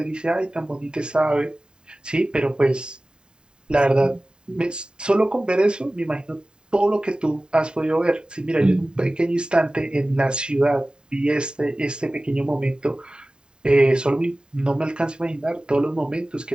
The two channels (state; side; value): late; left; 0.048 ms